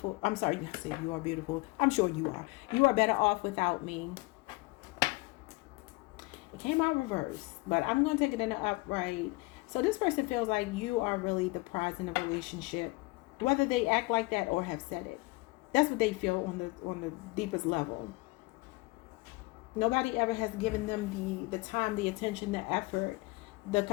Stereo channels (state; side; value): quieter; right; 24.1 dB